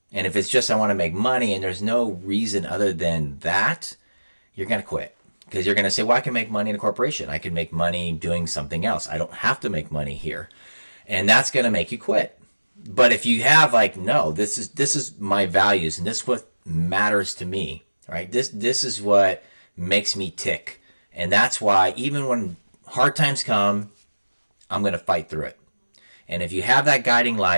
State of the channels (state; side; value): inverted; both; correlation -1.00